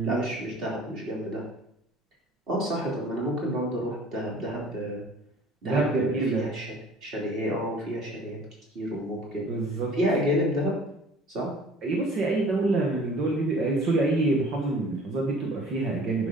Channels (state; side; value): normal; both; correlation 0.49